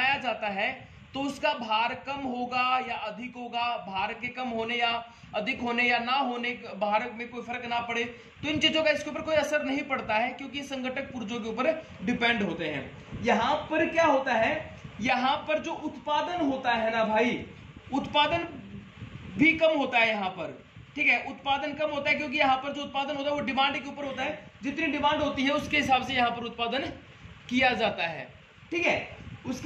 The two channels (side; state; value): both; identical; correlation 1.00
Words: जाता है तो उसका भार कम होगा या अधिक होगा, भार के कम होने या अधिक होने या ना होने, भार में कोई फर्क ना पड़े, तो इन चीजों का इसके ऊपर कोई असर नहीं पड़ता है, क्योंकि संगठक पुर्जों के ऊपर डिपेंड होते हैं। यहां पर क्या होता है, यहां पर जो उत्पादन होता है ना भाई, उत्पादन भी कम होता है यहाँ पर, ठीक है। उत्पादन कम होता है क्योंकि यहाँ पर जो उत्पादन होता है वो डिमांड के ऊपर होता है। जितनी डिमांड होती है उसके हिसाब से यहाँ पर उत्पादन किया जाता है, ठीक है।